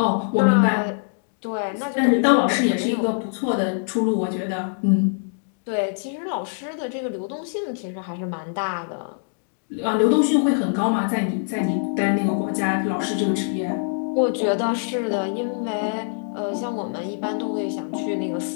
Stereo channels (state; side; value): silent; right; digital silence